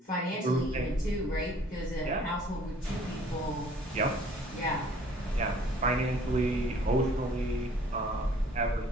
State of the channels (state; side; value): normal; both; correlation 0.56